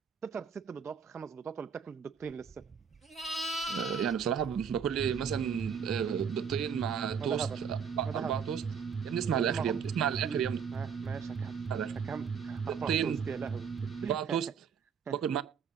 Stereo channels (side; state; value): left; quieter; 6.9 dB